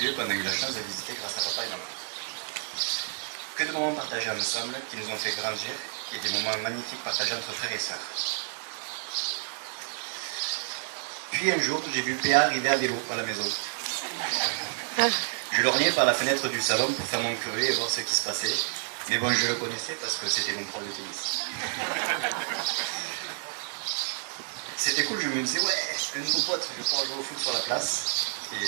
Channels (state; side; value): silent; left; digital silence